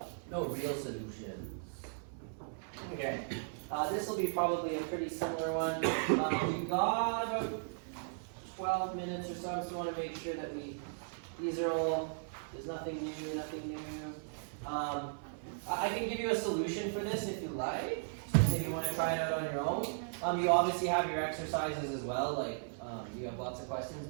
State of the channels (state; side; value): silent; left; 53 dB below the other